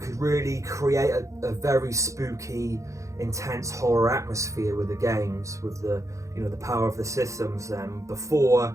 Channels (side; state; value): left; late; 0.15 ms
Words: could really create a very spooky, intense horror atmosphere with the games, with the the power of the systems. Before,